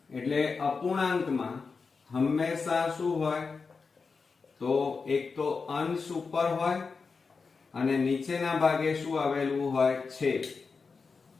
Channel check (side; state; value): right; quieter; 4.8 dB